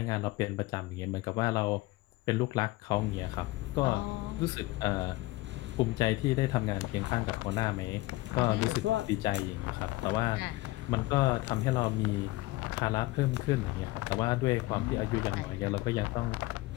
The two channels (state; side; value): quieter; right; 19.8 dB